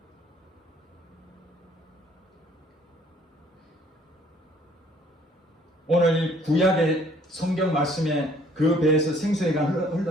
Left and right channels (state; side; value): normal; both; correlation 0.60